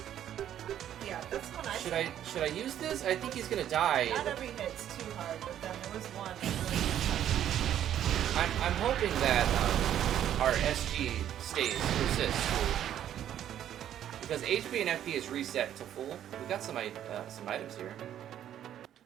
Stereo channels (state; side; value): quieter; left; 10.8 dB